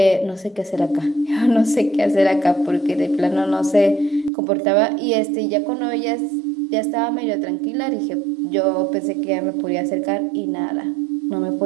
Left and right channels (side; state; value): left; drops out; at 4.3 s